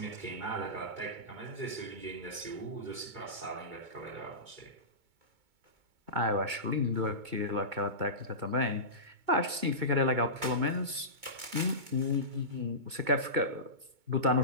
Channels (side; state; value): left; late; 2.2 ms